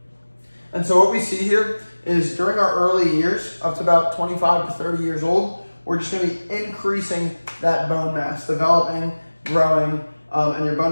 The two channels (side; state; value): both; inverted; correlation -1.00